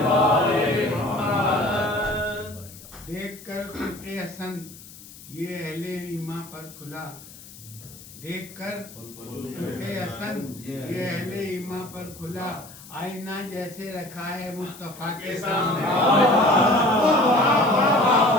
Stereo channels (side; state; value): left; noise; hiss, 18 dB below the sound